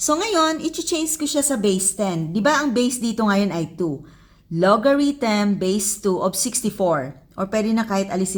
ngayon, i-change ko siya sa base 10. Di ba ang base dito ngayon ay 2? Logarithm base 2 of 64. Or pwede na kahit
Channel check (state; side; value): identical; both; correlation 1.00